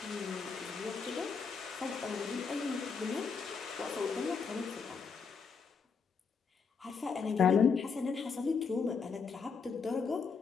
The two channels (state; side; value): quieter; right; 5.5 dB